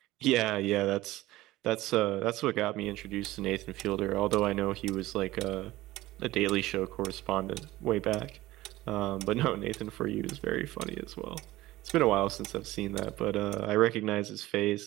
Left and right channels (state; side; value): quieter; left; 17.4 dB